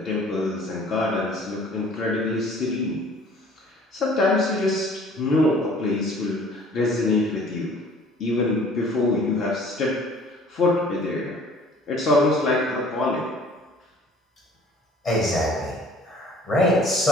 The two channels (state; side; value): normal; both; correlation 0.52